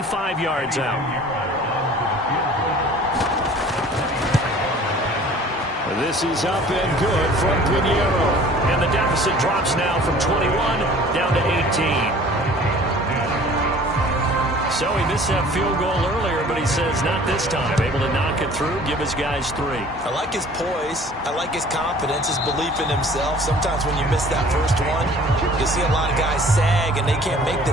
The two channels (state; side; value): normal; both; correlation 0.49